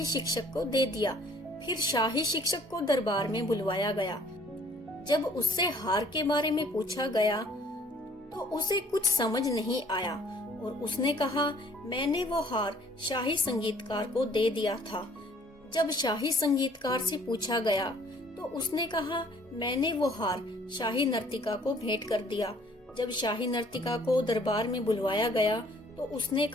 शिक्षक को दे दिया। फिर शाही शिक्षक को दरबार में बुलवाया गया। जब उससे हार के बारे में पूछा गया तो उसे कुछ समझ नहीं आया और उसने कहा, मैंने वो हार शाही संगीतकार को दे दिया था। जब शाही संगीतकार से पूछा गया तो उसने कहा, मैंने वो हार शाही नर्तिका को भेंट कर दिया। जब शाही नर्तिका को दरबार में बुलवाया गया तो उसने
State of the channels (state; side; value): normal; both; correlation 0.58